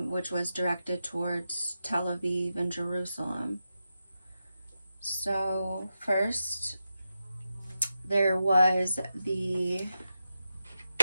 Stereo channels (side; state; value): both; inverted; correlation -0.89